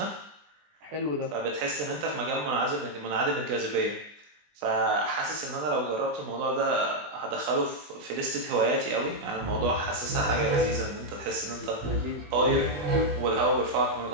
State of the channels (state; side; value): late; left; 20 ms